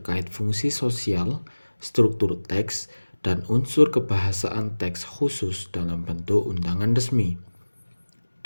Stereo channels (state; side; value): inverted; both; correlation -1.00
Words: fungsi sosial, struktur teks, dan unsur kebahasaan teks khusus dalam bentuk undangan resmi.